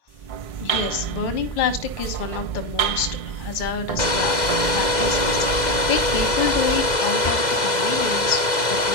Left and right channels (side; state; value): right; late; 2.0 ms